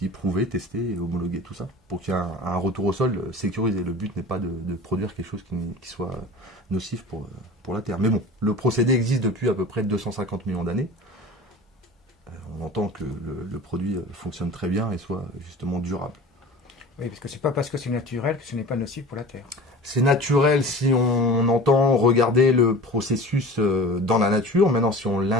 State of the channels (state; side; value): normal; both; correlation 0.38